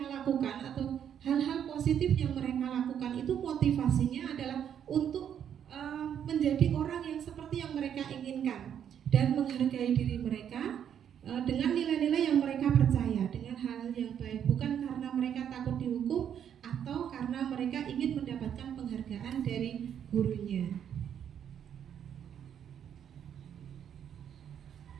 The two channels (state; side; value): quieter; left; 9.0 dB